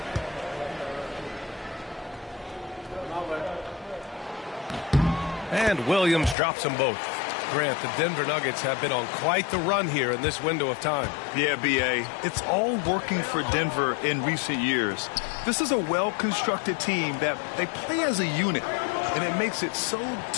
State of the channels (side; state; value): right; drops out; at 6.4 s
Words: And Williams drops them both. Grant, the Denver Nuggets have been on quite the run here in this window of time. Yeah, B.A. It's all working for Denver in recent years. This is a well-constructed team that they play as a unit, and it makes it so